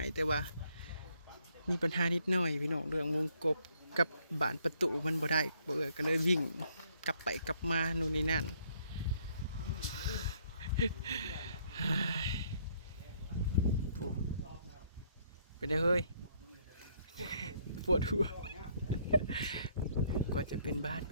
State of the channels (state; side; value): inverted; both; correlation -0.67